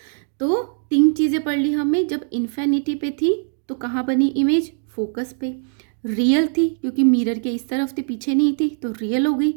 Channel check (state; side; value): silent; left; 65 dB below the other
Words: तो तीन चीज़ें पढ़ ली हमने। जब इन्फिनिटी पे थी तो कहाँ बनी इमेज, फोकस पे। रियल थी क्योंकि मिरर के इस तरफ थी, पीछे नहीं थी, तो रियल हो गई